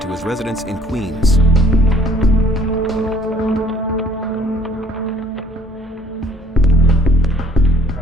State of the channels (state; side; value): normal; both; correlation 0.58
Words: his residence in Queens.